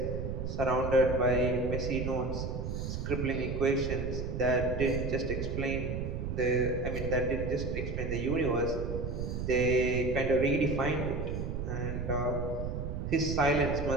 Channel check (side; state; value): right; noise; rumble, 4 dB below the sound